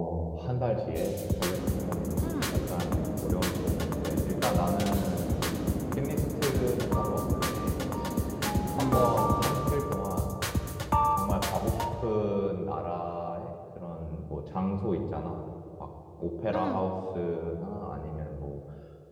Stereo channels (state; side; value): identical; both; correlation 1.00